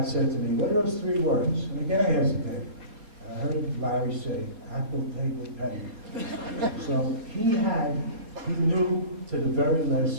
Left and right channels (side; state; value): left; late; 4.3 ms